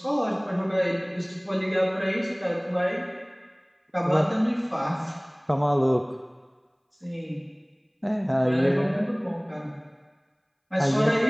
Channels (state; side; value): identical; both; correlation 1.00